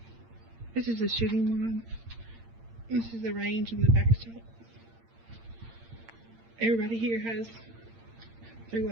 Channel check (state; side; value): late; left; 8.8 ms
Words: This is the shooting one. This is the range and the backstop. Everybody here has their